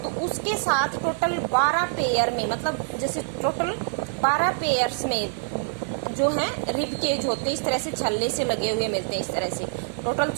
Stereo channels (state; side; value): silent; left; digital silence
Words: तो उसके साथ टोटल 12 पेयर में, मतलब जैसे टोटल 12 पेयर्स में जो है रिब केज होते हैं, इस तरह से छल्ले से लगे हुए मिलते हैं, इस तरह से टोटल